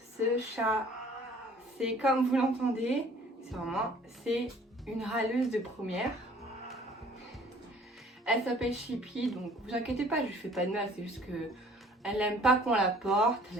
chat, c'est comme vous l'entendez, c'est une râleuse de première. Elle s'appelle Chippy, donc vous inquiétez pas, je lui fais pas de mal, c'est juste que elle n'aime pas qu'on la porte,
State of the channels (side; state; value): both; normal; correlation 0.54